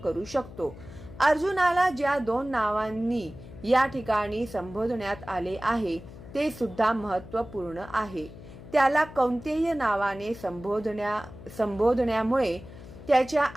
करू शकतो. अर्जुनाला ज्या 2 नावांनी या ठिकाणी संबोधण्यात आले आहे ते सुद्धा महत्त्वपूर्ण आहे. त्याला कौंतेय नावाने संबोधण्यामुळे त्याच्या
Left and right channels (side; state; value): left; noise; hum, 16 dB below the sound